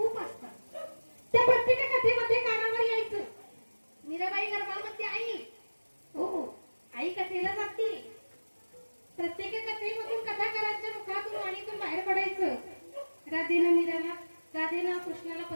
असतात. त्या प्रत्येक कथेमध्ये कानावर यायचं मीराबाई गर्भामध्ये आई. हो, आई कथेला जाते. प्रत्येक कथेमधून कथाकारांच्या मुखातून वाणीतून बाहेर पडायचं. राधेनं कृष्णाला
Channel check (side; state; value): both; inverted; correlation -1.00